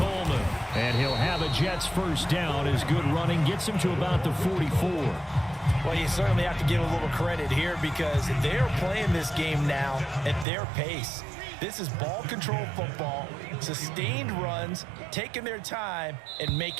And he'll have a Jets first down as good running gets him to about the 44. Well, you certainly have to give a little credit here because they're playing this game now at their pace. This is ball control football, sustained runs, taking their time, and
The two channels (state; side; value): drops out; left; at 10.5 s